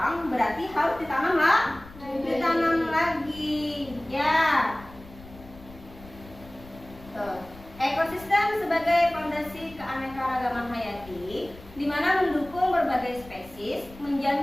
berarti harus ditanam lah. Ditanam lagi. Ya. Tuh. Ekosistem sebagai fondasi keanekaragaman hayati, di mana mendukung berbagai spesies,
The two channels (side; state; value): left; noise; rumble, 19 dB below the sound